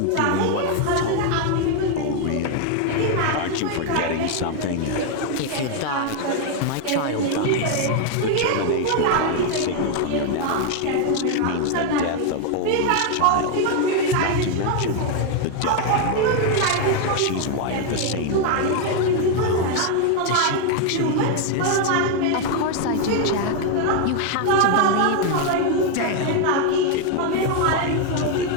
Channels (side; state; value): both; different; correlation 0.01